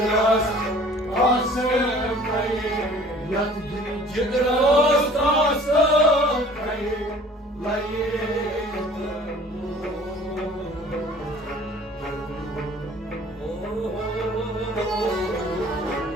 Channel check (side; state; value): both; normal; correlation 0.50